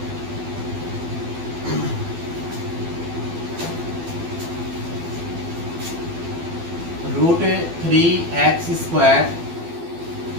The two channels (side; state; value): left; late; 12 ms